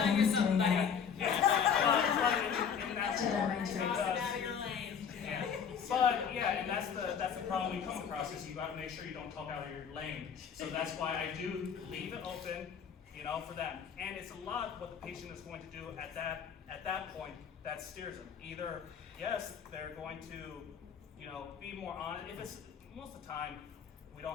you something, buddy. But yeah, and that's the problem we come across is you got to make sure you don't talk out of your lane. So that's why I do leave it open, you know, for them. And it's a lot what the patient is going to do at that point that steers them. Either yes, they're going to, you know, be more honest. If it's most of the time we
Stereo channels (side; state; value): right; quieter; 7.3 dB